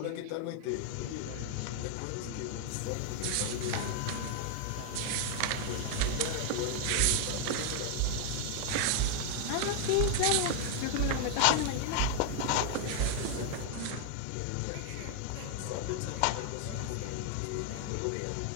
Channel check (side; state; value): both; different; correlation 0.00